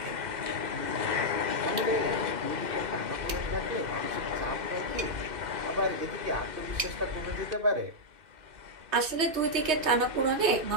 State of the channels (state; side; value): late; left; 2.6 ms